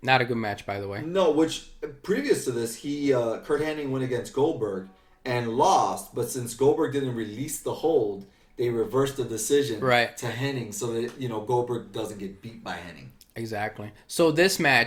Not a good match, by the way. No, which previous to this, Kurt Hennig went against Goldberg and lost, but since Goldberg didn't release the hold, they reversed the decision to Hennig so that, Goldberg doesn't get beat by Hennig. Exactly. So this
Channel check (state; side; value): identical; both; correlation 1.00